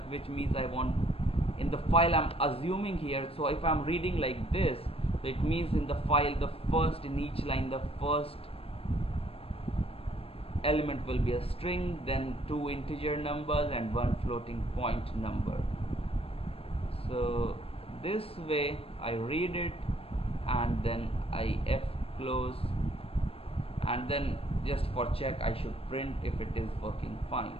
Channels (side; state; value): right; late; 0.28 ms